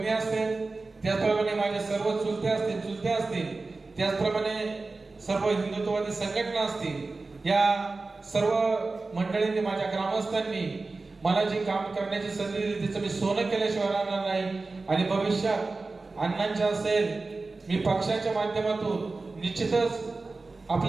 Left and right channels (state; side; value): quieter; left; 3.6 dB